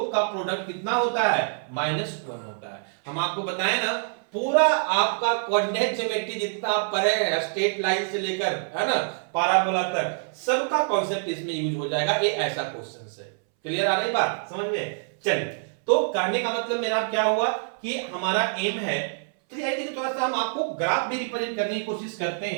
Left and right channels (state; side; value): silent; left; 61 dB below the other